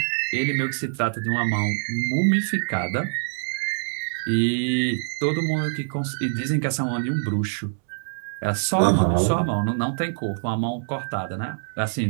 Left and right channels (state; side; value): silent; left; digital silence